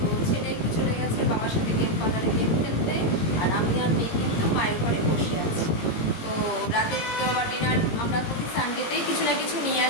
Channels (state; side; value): late; right; 18 ms